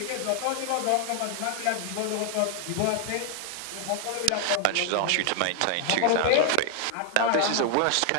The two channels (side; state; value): both; different; correlation 0.00